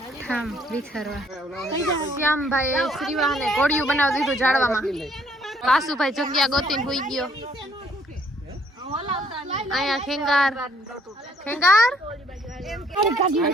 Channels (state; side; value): normal; both; correlation 0.64